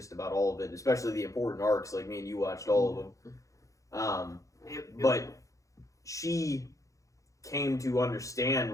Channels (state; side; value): late; right; 0.16 ms